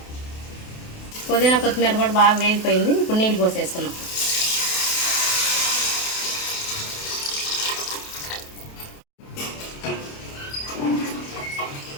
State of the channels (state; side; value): late; right; 28 ms